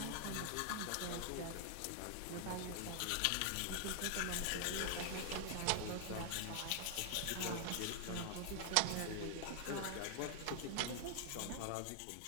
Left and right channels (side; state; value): both; different; correlation 0.00